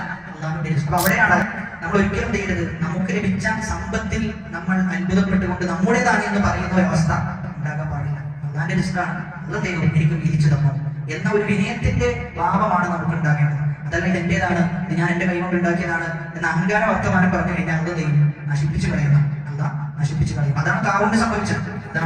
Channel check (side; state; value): both; identical; correlation 1.00